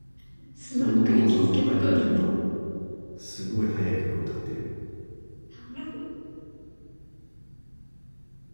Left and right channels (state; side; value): inverted; both; correlation -1.00